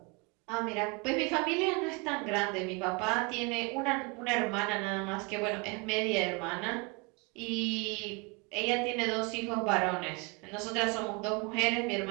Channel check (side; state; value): left; quieter; 28.9 dB